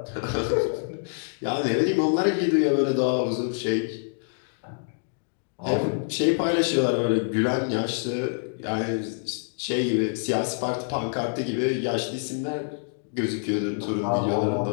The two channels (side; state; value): right; silent; digital silence